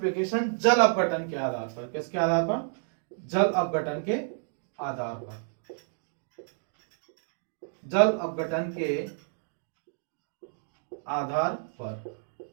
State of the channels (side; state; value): left; silent; digital silence